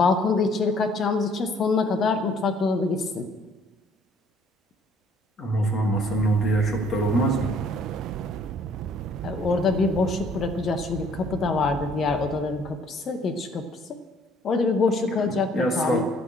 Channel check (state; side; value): normal; both; correlation 0.60